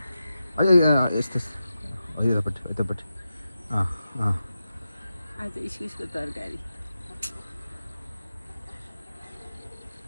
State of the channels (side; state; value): both; inverted; correlation -0.91